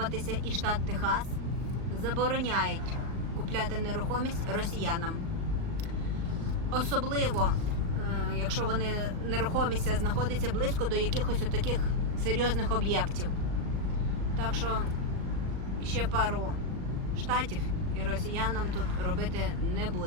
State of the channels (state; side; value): late; left; 38 ms